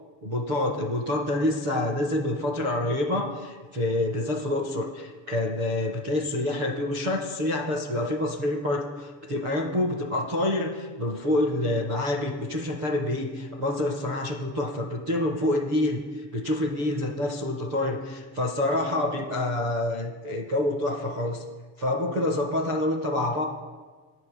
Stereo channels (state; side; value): late; left; 6.8 ms